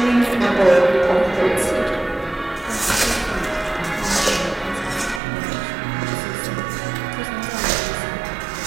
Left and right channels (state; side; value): drops out; left; at 5.2 s